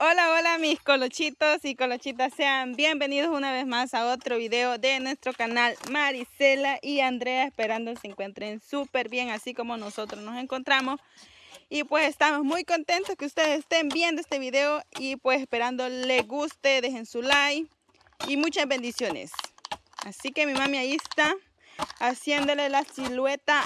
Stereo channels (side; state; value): both; identical; correlation 1.00